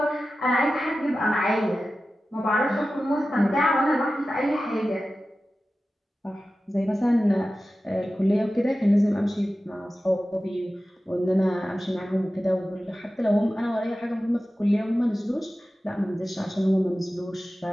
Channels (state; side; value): normal; both; correlation 0.94